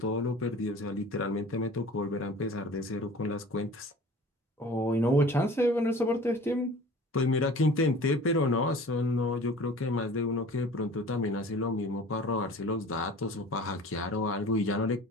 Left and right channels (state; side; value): normal; both; correlation 0.43